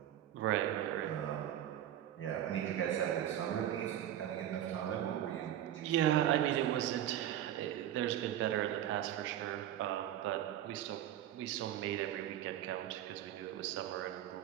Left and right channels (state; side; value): quieter; left; 11.7 dB